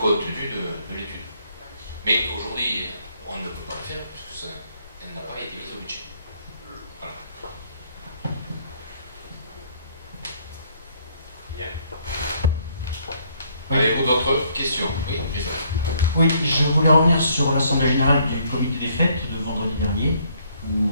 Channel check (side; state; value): both; inverted; correlation -0.67